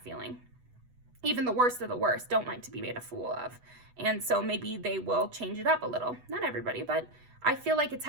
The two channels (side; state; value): left; late; 8.1 ms